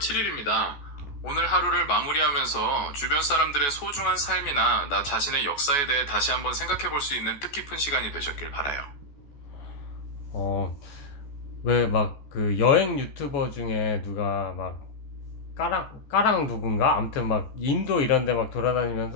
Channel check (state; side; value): late; right; 14 ms